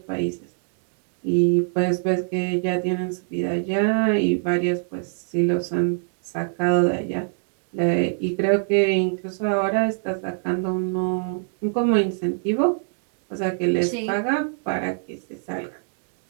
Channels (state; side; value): silent; left; digital silence